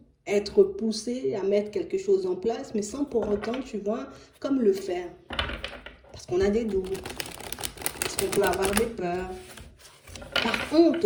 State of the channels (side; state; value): both; identical; correlation 1.00